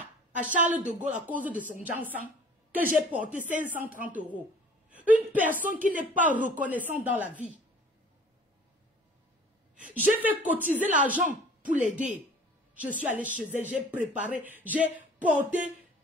à Charles de Gaulle, à cause de son Jansan, que j'ai porté 530 €. Une personne qui n'est pas reconnaissante dans la vie. J'ai fait cotiser l'argent pour l'aider. Je suis allée chez elle, j'ai préparé, j'ai porté.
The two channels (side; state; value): both; normal; correlation 0.49